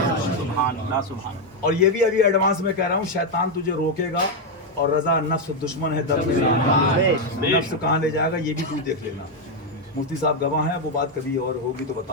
और ये भी अभी एडवांस में कह रहा हूँ, शैतान तुझे रोकेगा और रजा नफ्स दुश्मन है, दर्द नफ्स कहाँ ले जाएगा ये भी तू देख लेना। मुफ्ती साहब गवाह हैं, वो बात कभी और होगी तो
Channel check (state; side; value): normal; both; correlation 0.03